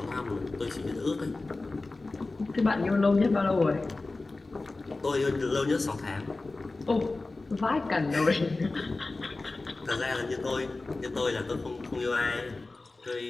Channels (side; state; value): right; quieter; 3.3 dB